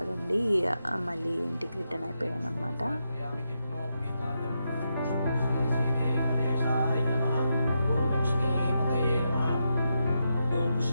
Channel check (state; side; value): inverted; both; correlation -0.85